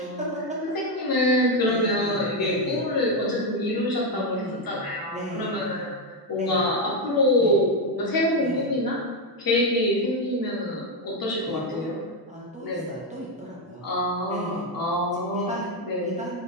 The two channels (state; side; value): normal; both; correlation 0.06